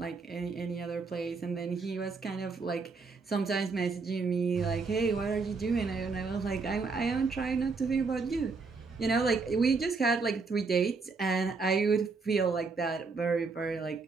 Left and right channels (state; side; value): quieter; left; 4.4 dB